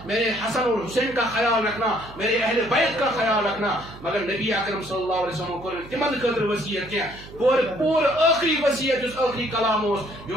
میرے حسن اور حسین کا خیال رکھنا، میرے اہل بیت کا خیال رکھنا. مگر نبی اکرم صلی اللہ علیہ وسلم کور تمن خاطر وصیت کی پور آخری وصیت اس آخری کلام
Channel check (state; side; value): noise; right; hum, 17 dB below the sound